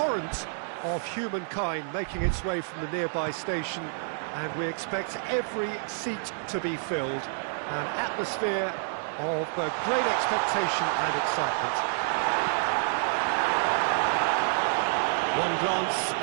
of humankind making its way from the nearby station, and we expect every seat to be filled. An atmosphere of great expectation and excitement. One glance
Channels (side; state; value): left; silent; digital silence